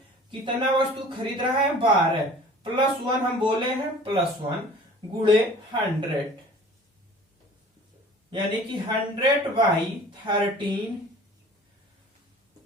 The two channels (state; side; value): normal; both; correlation 0.46